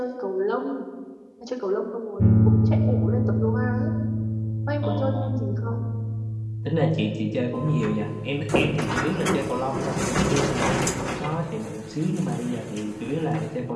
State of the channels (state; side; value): identical; both; correlation 1.00